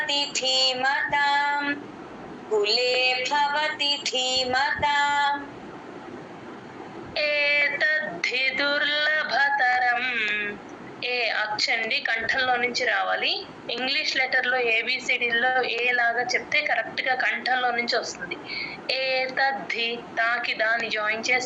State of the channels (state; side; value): identical; both; correlation 1.00